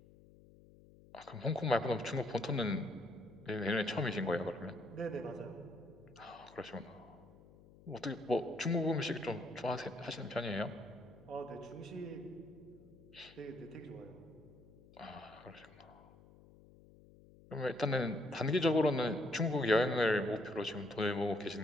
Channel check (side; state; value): left; noise; hum, 23 dB below the sound